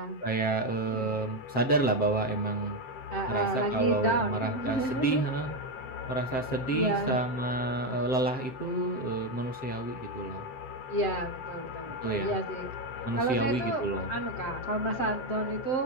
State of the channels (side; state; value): right; late; 7.7 ms